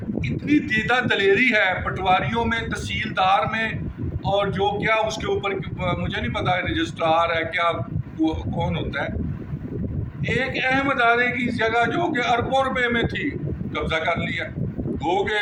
دیدہ دلیری ہے پٹواریوں میں، تحصیلدار میں، اور جو کیا اس کے اوپر مجھے نہیں پتا رجسٹرار ہے کیا کون ہوتا ہے، ایک اہم ادارے کی جگہ جو کہ اربوں روپے میں تھی قبضہ کر لیا. گو کہ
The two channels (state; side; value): identical; both; correlation 1.00